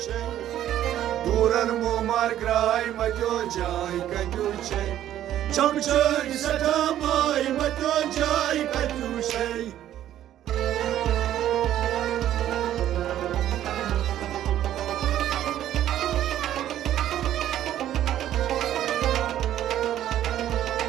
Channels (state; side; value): quieter; left; 12.0 dB